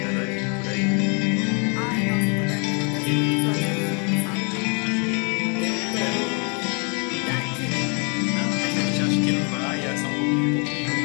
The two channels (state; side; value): quieter; right; 36.2 dB